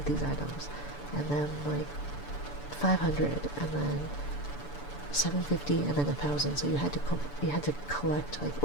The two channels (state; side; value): late; right; 6.9 ms